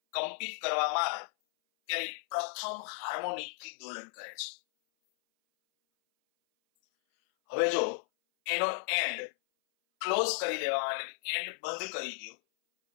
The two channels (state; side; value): silent; right; 55 dB below the other